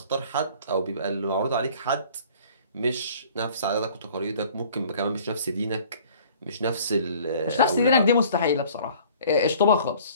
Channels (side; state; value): both; inverted; correlation -0.51